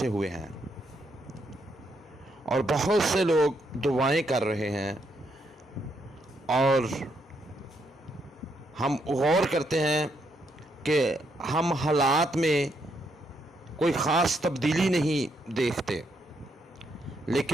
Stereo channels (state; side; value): normal; both; correlation 0.77